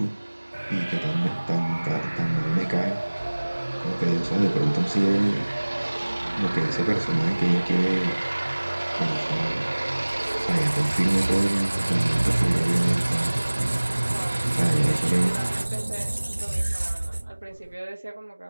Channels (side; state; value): both; inverted; correlation -1.00